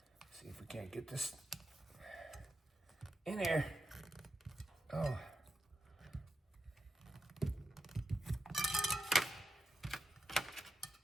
See if we can't get this in here. Oh.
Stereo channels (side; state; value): both; normal; correlation 0.88